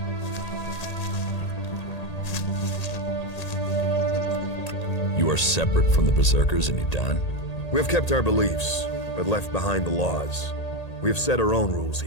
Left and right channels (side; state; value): right; late; 1.8 ms